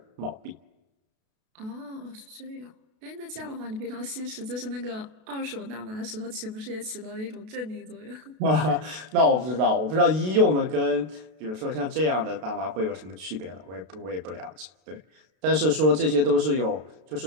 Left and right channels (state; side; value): late; left; 32 ms